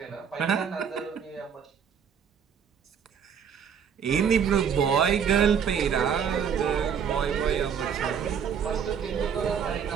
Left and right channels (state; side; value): quieter; left; 7.4 dB